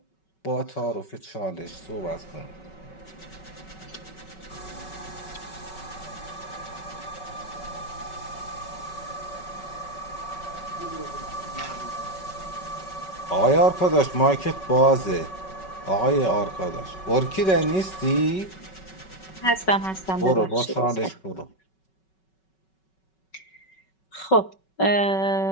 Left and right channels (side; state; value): right; late; 5.3 ms